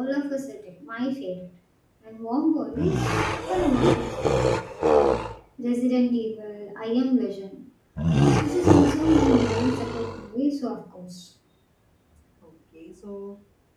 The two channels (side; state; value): both; identical; correlation 1.00